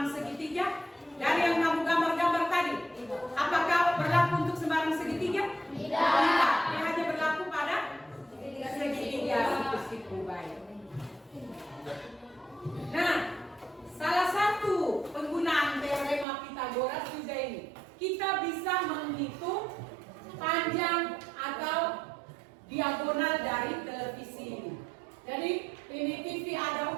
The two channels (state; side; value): drops out; left; at 16.2 s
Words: segitiga? Dari yang kamu gambar-gambar tadi, apakah berlaku untuk sembarang segitiga? Tidak. Dia hanya berlaku pada segitiga siku baik. Nah, salah satu penggunaan teorema Pythagoras juga ini. Kita bisa menghitung panjang atau diagonal dari televisi ini. Jadi ini TV ada